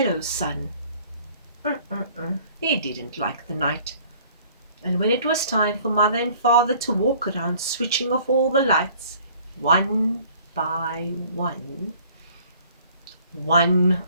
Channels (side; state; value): both; inverted; correlation -0.55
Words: sun. He didn't like the night. And when it was time for mother and father to walk around switching off all the lights, one by one,